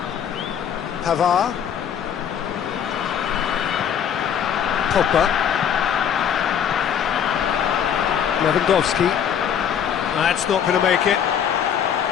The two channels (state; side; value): quieter; right; 8.5 dB